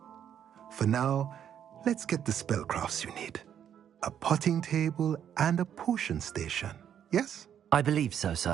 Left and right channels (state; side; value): quieter; left; 9.3 dB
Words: For now, let's get the spellcrafts you need. A potting table and a potion station, yes? I believe so,